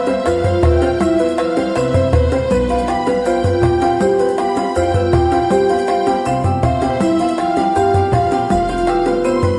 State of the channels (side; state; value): both; identical; correlation 1.00